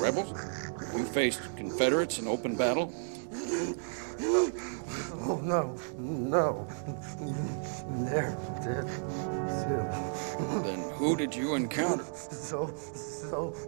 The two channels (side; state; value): left; silent; digital silence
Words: rebels? You faced Confederates in open battle? Oh, no. They're dead, too. Then who did you encounter? So